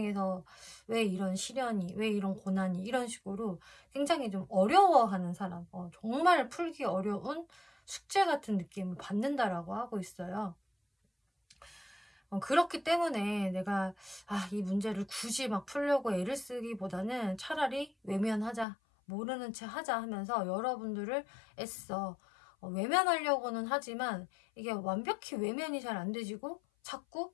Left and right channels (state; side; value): drops out; right; at 18.7 s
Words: 왜 이런 시련이, 왜 이런 고난이 이런 식으로 굉장히 좀 어려워하는 사람, 정말 풀기 어려운 숙제 같은 느낌을 받는다라고 하고 있어요. 그렇기 때문에 내가 이 문제를 굳이 막 풀려고 애를 쓰기보다는 차라리 외면하자, 모르는 채 하자 하면서 여러분들을 애써 외면하려고는 하지만 이게 완벽히 외면이 잘 안 되지고 자꾸